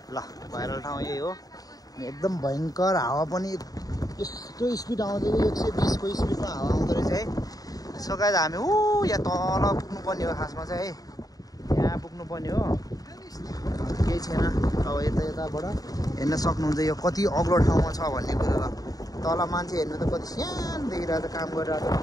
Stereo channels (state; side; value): late; right; 0.18 ms